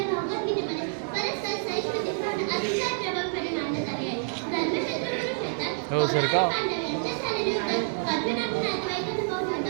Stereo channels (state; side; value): silent; left; digital silence